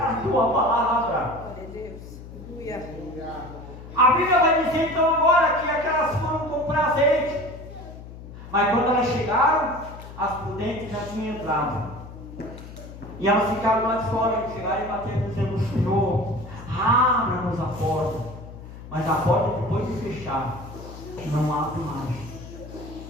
a tua palavra. A Bíblia vai dizer então agora que aquelas foram comprar azeite, mas quando elas chegaram, as prudentes já tinham entrado, e elas ficaram lá de fora, e chegaram e bateram dizendo: Senhor, abra-nos a porta. Mas a porta, depois de fechar, não abre mais.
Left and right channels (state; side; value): noise; left; hum, 14 dB below the sound